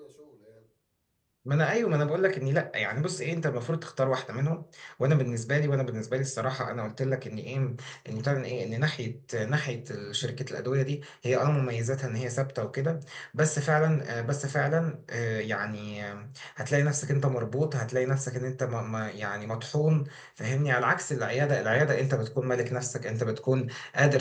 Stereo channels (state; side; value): identical; both; correlation 1.00